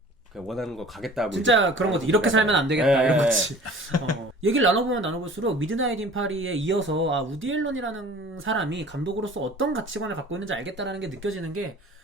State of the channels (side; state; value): both; normal; correlation 0.45